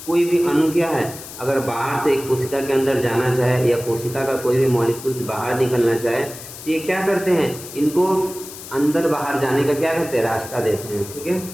भी अणु क्या है, अगर बाहर से एक कोशिका के अंदर जाना चाहे या कोशिका का कोई भी मॉलिक्यूल्स बाहर निकलना चाहे, तो ये क्या करते हैं? इनको अंदर बाहर जाने का क्या करते हैं? रास्ता देते हैं, ठीक है।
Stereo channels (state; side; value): noise; left; hiss, 13 dB below the sound